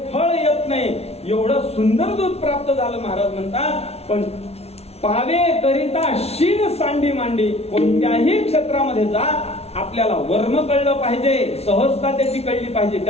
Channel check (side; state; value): right; late; 0.30 ms